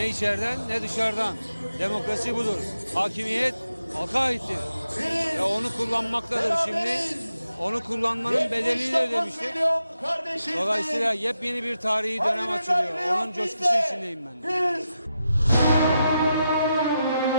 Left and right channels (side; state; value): both; inverted; correlation -0.87